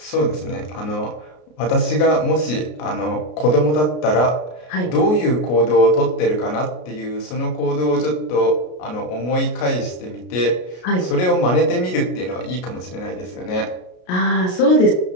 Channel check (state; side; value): late; right; 33 ms